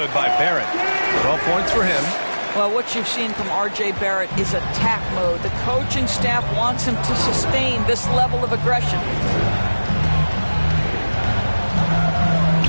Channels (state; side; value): inverted; both; correlation -1.00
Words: by Barrett. 12 points for him. Well, what you've seen from R.J. Barrett is attack mode. The coaching staff wants him to sustain this level of aggression.